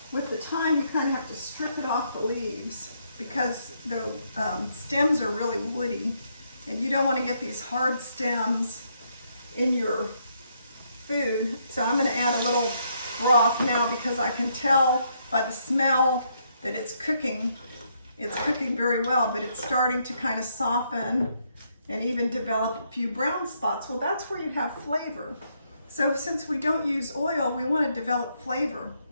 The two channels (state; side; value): inverted; both; correlation -0.74